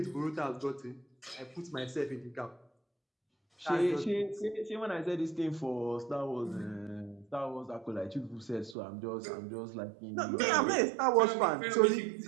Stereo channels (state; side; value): drops out; left; at 8.8 s